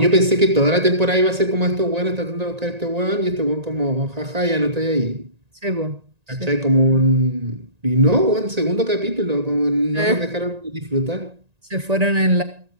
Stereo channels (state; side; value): late; left; 1.9 ms